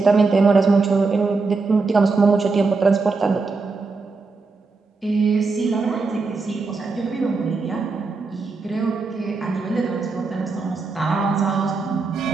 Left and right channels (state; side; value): quieter; left; 4.1 dB